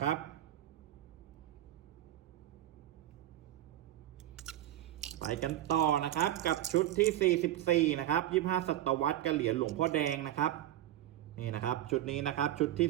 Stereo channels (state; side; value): quieter; left; 13.3 dB